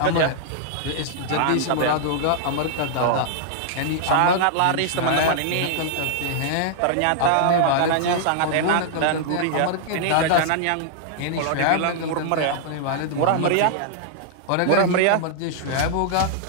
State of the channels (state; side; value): different; both; correlation -0.01